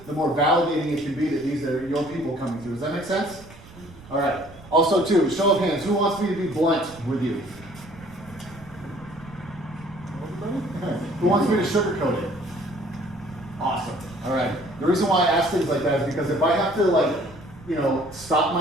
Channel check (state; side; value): noise; right; rumble, 20 dB below the sound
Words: the more validating it can be that these are your people coming through. Does that make sense? All right. Also, too, show of hands. Who wants me to be blunt with you? Who wants me to sugarcoat it? Awesome. All right. The reason why I ask things like that is because if I have to, stop